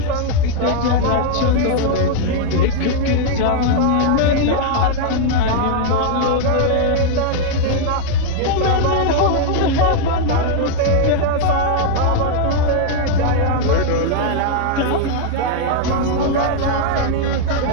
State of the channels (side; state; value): both; different; correlation 0.00